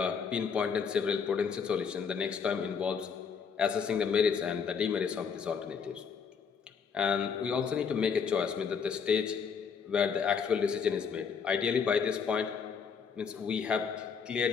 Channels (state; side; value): quieter; right; 6.3 dB